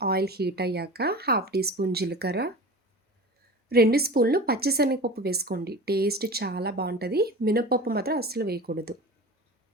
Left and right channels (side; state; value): both; normal; correlation 0.34